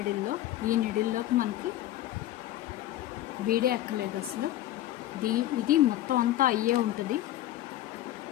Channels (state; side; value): quieter; right; 13.8 dB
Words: ఈ నీడిల్లోకి మనకి బీడే ఎక్కలేదు అసలు. ఇది మొత్తం అంతా అయ్యే ఉంటుంది.